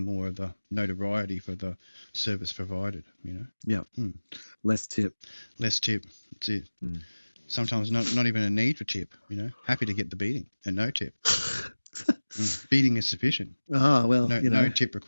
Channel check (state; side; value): inverted; both; correlation -1.00